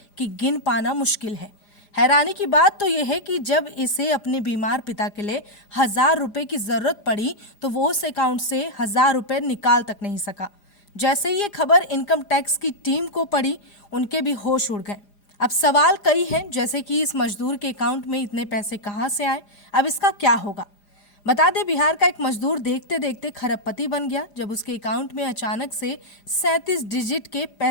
कि गिन पाना मुश्किल है। हैरानी की बात तो यह है कि जब इसे अपने बीमार पिता के लिए 1000 रुपए की जरूरत पड़ी तो वो उस अकाउंट से 1000 रुपए निकाल तक नहीं सका। जैसे ही ये खबर इनकम टैक्स की टीम को पड़ी, उनके भी होश उड़ गए। अब सवाल कई हैं, जैसे कि इस मजदूर के अकाउंट में इतने पैसे कहां से आए, अब इसका क्या होगा। बता दें, बिहार का एक मजदूर देखते देखते खरबपति बन गया जब उसके अकाउंट में अचानक से 37 डिजिट के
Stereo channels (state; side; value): late; right; 4.9 ms